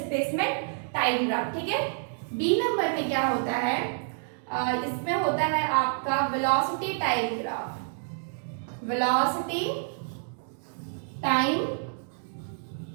टाइम ग्राफ। ठीक है, बी नंबर में क्या होता है, इसमें होता है आपका velocity time graph, velocity time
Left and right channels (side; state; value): left; silent; digital silence